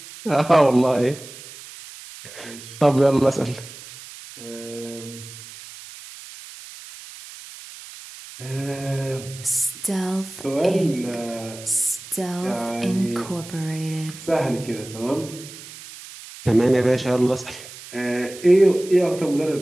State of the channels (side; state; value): right; noise; hiss, 16 dB below the sound